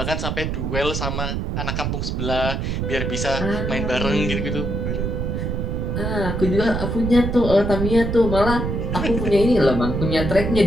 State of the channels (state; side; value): noise; right; rumble, 1 dB below the sound